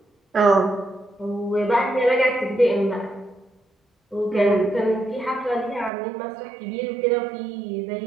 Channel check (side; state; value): left; drops out; at 5.9 s